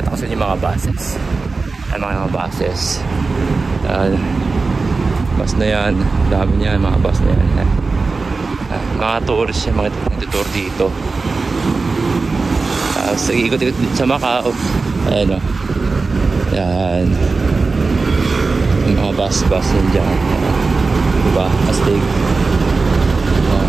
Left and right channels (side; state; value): left; quieter; 4.0 dB